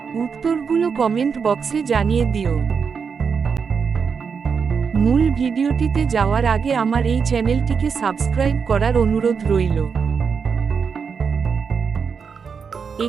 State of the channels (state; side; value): quieter; left; 6.0 dB